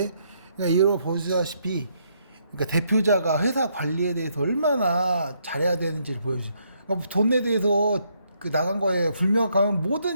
그러니까 이거 보시다시피 그러니까 대표자가 회사 관리에 대해서 얼마나 잘해야 되는지를 보여주죠. 그러니까 돈에 대해서 나간 거에 불명확하면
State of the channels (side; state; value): both; inverted; correlation -0.73